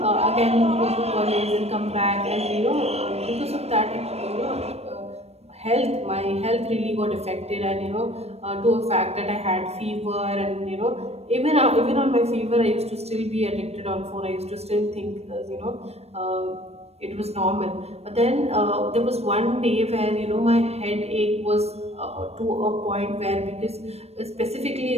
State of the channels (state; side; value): late; left; 0.31 ms